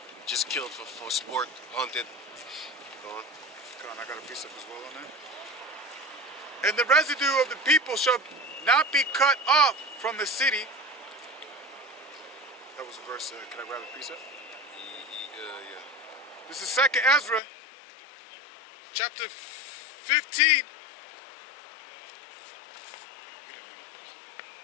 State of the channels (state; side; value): drops out; right; at 17.4 s